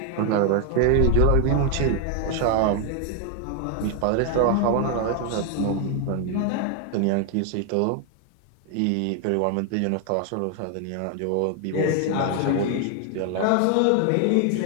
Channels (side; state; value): both; different; correlation 0.00